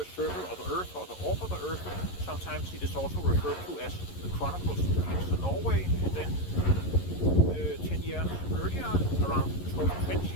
circle of the earth or the orb of the earth. Sometimes it is also referred to as the Chronicles of Norway. And then 10 years earlier, around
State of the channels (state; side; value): late; right; 11 ms